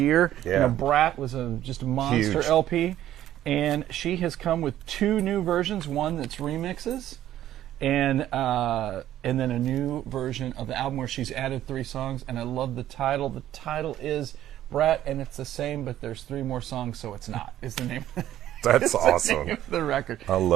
Yeah. You know, Brat was just a monster Huge. LP. And she has come with two new versions, one that's remixes, and then a new version of the album where she's added 3 songs. And I love the title. The title is Brat, and it's the same, but there's 3 more songs, so it's not, is the name. That's awesome. The name of the record. I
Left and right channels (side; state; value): left; quieter; 12.5 dB